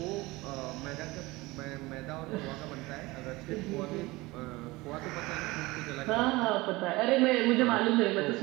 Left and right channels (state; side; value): quieter; left; 21.5 dB